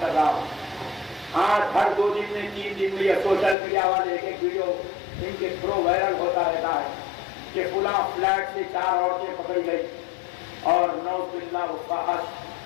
کر رہا ہوں، آج ہر 2 دن میں 3 دن میں یہ سوشل میڈیا والے ایک ایک ویڈیو ان کے تھرو وائرل ہوتا رہتا ہے کہ فلاں فلیٹ سے 4 عورتیں پکڑی گئی اور نعوذ باللہ وہ فحش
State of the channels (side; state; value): right; drops out; at 3.6 s